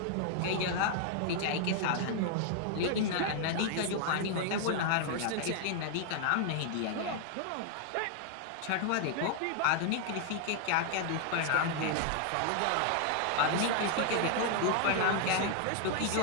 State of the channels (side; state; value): both; different; correlation 0.00